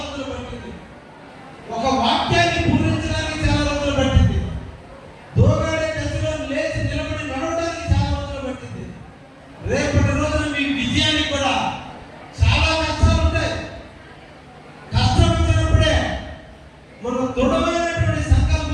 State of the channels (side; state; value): both; identical; correlation 1.00